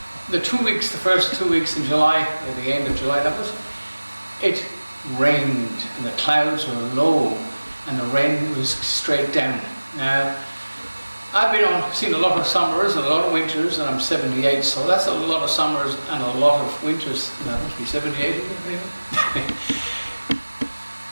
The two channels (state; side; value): inverted; both; correlation -1.00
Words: the first 2 weeks in July, at the end of July, it rained and the clouds were low and the rain was straight down. Now, I've seen a lot of summers and a lot of winters, and I'm 78, so that's a lot of summers and a lot of winters. That must be 78, maybe.